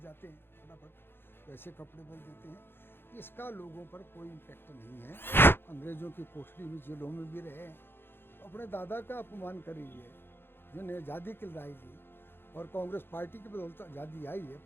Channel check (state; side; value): late; right; 0.10 ms